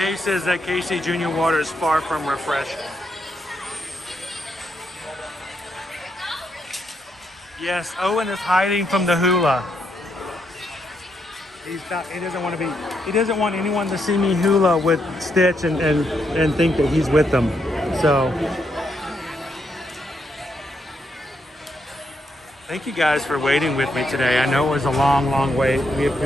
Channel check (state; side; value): normal; both; correlation 0.78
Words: says that KC Junior water is far from refreshing. Yes, Owen is hiding from the Hula. He doesn't want to be. He doesn't want anyone to see me Hula with Stitch and think that he's with them. So, thank you guys for waiting with me today. I know it was a long, long wait. We